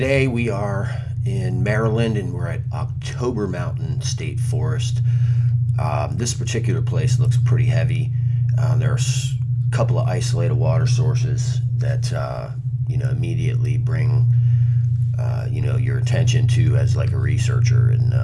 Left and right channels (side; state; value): both; identical; correlation 1.00